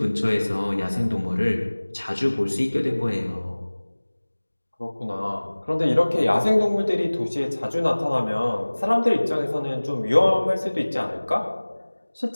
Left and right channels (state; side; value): inverted; both; correlation -1.00